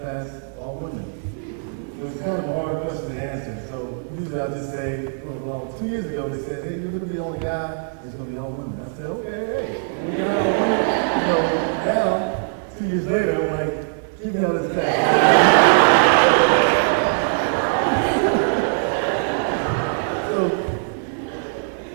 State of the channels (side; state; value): left; silent; digital silence